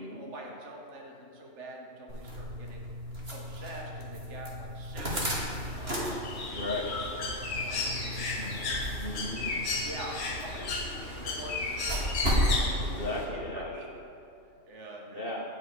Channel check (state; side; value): late; left; 2.9 ms